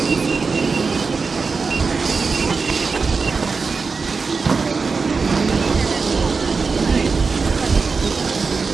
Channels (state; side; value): quieter; left; 4.7 dB